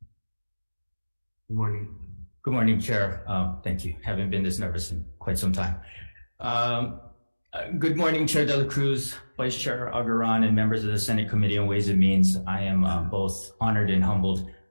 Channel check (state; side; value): inverted; both; correlation -1.00